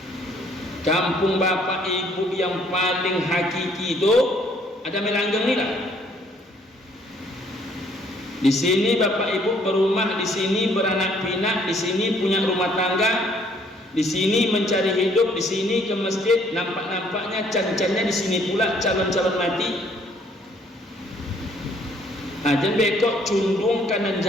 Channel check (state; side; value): normal; both; correlation 0.63